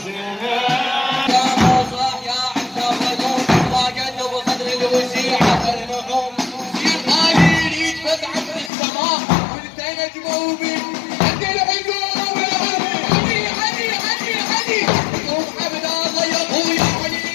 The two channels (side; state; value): right; drops out; at 8.7 s